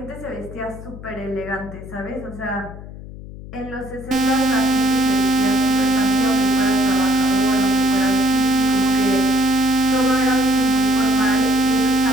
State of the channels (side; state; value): left; noise; hum, 14 dB below the sound